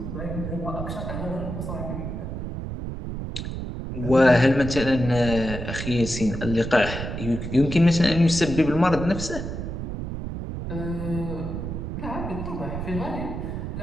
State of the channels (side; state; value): right; noise; rumble, 6 dB below the sound